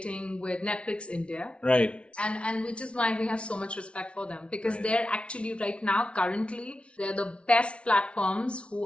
with Netflix India, right? And which is why we have so much respect for them, because they're actually right now, currently, they're the best platforms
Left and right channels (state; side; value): late; right; 0.059 ms